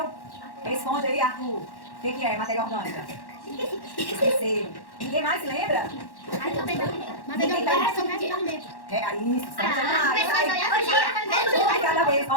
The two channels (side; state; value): right; late; 1.1 ms